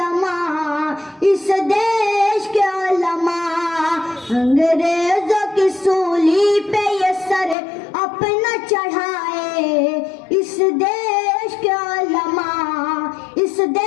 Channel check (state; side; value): drops out; right; at 7.6 s